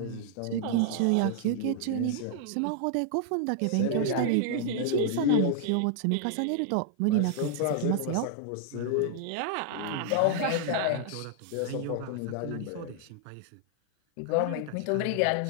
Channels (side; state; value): both; different; correlation 0.00